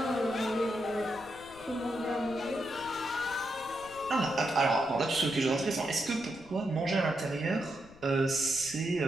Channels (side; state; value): left; noise; rumble, 22 dB below the sound